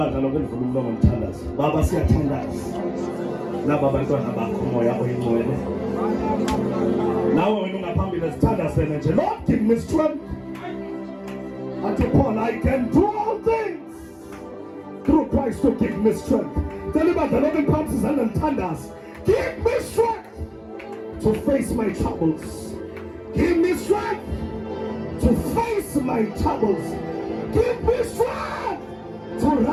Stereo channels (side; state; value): both; identical; correlation 1.00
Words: lonke livule umlomo ngithandaze. Baba siyathandaza laba bantwana bakho moya oyingcwele. Nawe wena ungaphambili sithandazene nje. Lord, give me strength. Unto Paul, I can do all things through Christ to give me strength. Tell ibandla lonke phansi izandla ngithandaze. Give me strength to face my troubles. Give me strength to face my troubles. Give me strength to